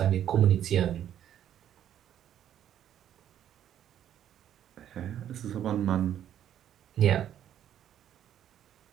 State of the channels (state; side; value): quieter; left; 10.6 dB